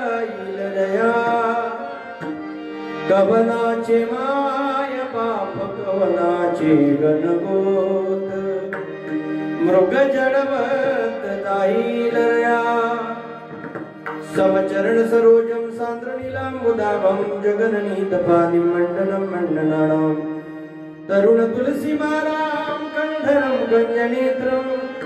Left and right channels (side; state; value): both; identical; correlation 1.00